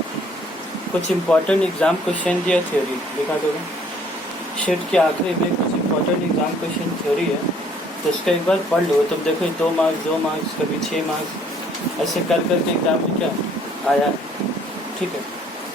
कुछ इम्पोर्टेंट एग्जाम क्वेश्चन दिया थ्योरी देखा दोगे शीट के आखिरी में कुछ इम्पोर्टेंट एग्जाम क्वेश्चन थ्योरी है तो उसका एक बार पढ़ लो तब देखो 2 मार्क्स कभी 6 मार्क्स ऐसे कर करके एग्जाम में क्या आया ठीक है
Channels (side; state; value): both; normal; correlation 0.60